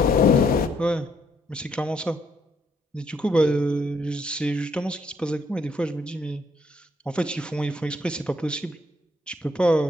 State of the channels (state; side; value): normal; both; correlation 0.70